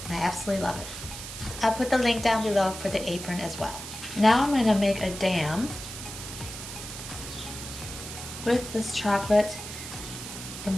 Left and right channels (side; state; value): right; noise; hiss, 10 dB below the sound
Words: And I absolutely love it. I'll put the link down below for the apron as well. Now I'm going to make a dam with this chocolate